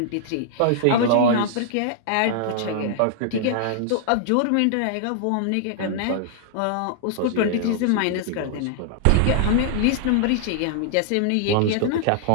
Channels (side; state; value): both; different; correlation -0.01